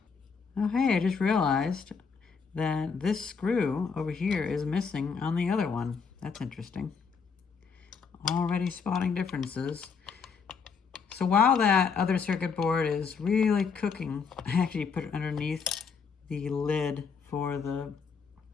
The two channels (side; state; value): right; quieter; 5.7 dB